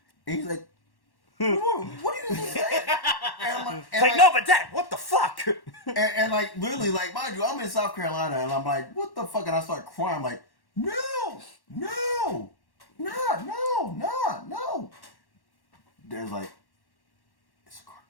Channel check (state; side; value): late; right; 1.1 ms